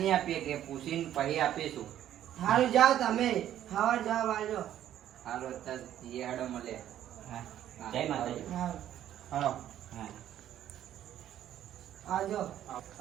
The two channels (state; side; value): quieter; left; 11.5 dB